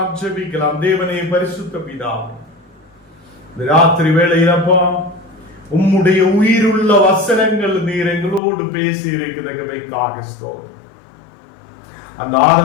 ஜெபிக்கலாம். தேவனே பரிசுத்த பிதாவே, இந்த ராத்திரி வேளையிலப்பா உம்முடைய உயிருள்ள வசனங்கள் நீர் எங்களோடு பேசி இருக்கிறதுக்காக ஸ்தோத்திரம். அந்த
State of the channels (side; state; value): right; drops out; at 8.4 s